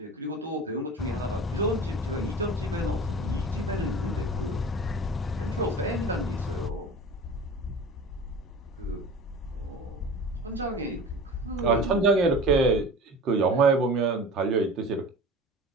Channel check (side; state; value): both; normal; correlation 0.37